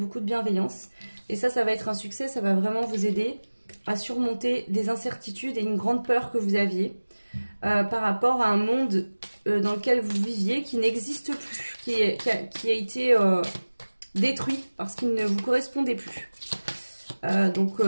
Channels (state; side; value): inverted; both; correlation -1.00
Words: de bienveillance. Et ça va être un succès, ça va vraiment vous aider à surmonter des incertitudes et une grande peur que vous aviez par rapport à un monde dans lequel vous viviez qui n'existe plus, qui a été détruit parce qu'il ne vous correspondait plus. Donc